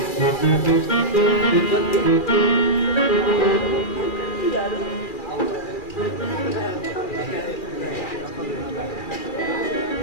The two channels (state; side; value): late; right; 2.4 ms